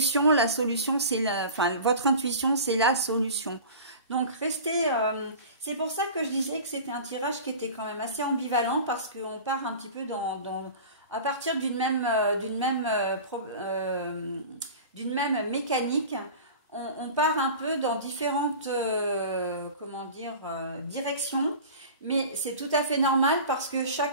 La solution, c'est votre intuition, c'est la solution. Donc, restez... c'est pour ça que je disais que c'était un tirage qui était quand même assez ambivalent parce qu'on part un petit peu à partir d'une même mécanique. On part un peu dans différentes comment dire, directions. Mais c'est tout à fait normal parce que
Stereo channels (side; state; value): both; inverted; correlation -0.37